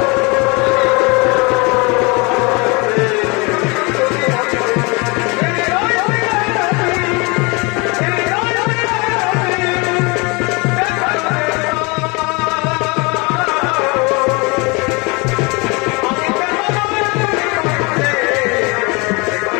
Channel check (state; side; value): quieter; right; 28.1 dB